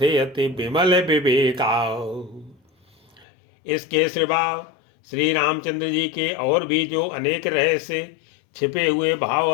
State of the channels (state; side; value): drops out; right; at 3.2 s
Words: अति विमल विवेका। इसके सिवा श्री रामचंद्र जी के और भी जो अनेक रहस्य छिपे हुए भाव